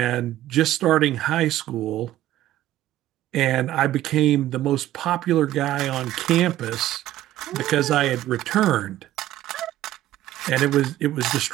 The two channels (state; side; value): quieter; left; 14.0 dB